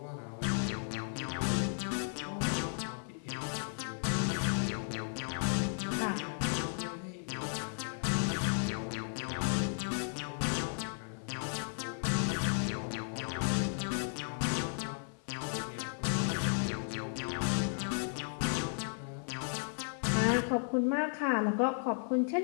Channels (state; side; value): silent; right; 54 dB below the other